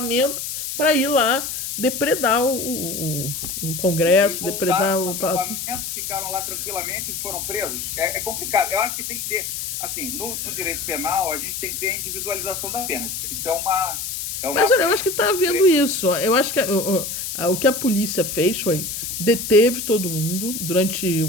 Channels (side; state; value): left; noise; hiss, 5 dB below the sound